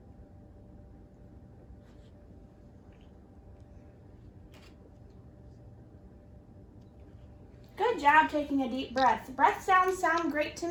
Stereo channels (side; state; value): both; identical; correlation 1.00